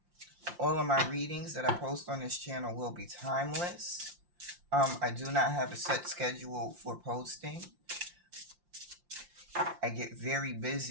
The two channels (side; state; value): left; late; 5.7 ms